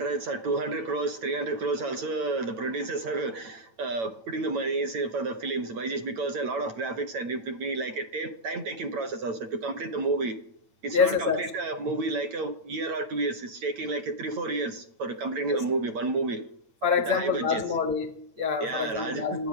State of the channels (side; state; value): left; late; 8.7 ms